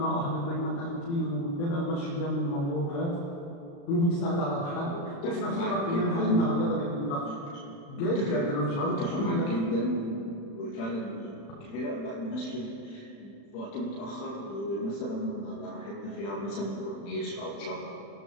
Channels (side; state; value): right; late; 35 ms